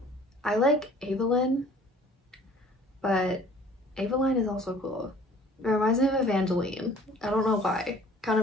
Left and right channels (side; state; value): both; normal; correlation 0.51